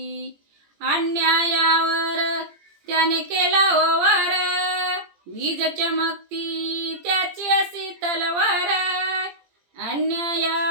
अन्यायावर त्याने केला वार, वीज चमकती त्याची अशी तलवार,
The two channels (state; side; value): late; left; 17 ms